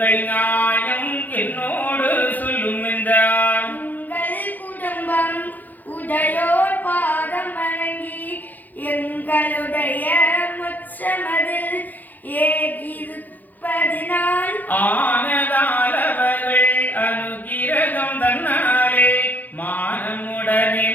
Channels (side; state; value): right; late; 0.083 ms